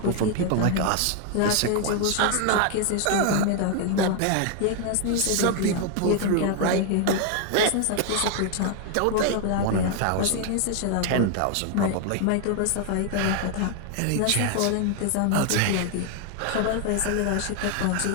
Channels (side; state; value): both; different; correlation 0.00